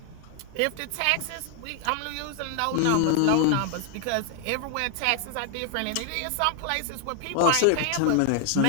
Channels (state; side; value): different; both; correlation 0.00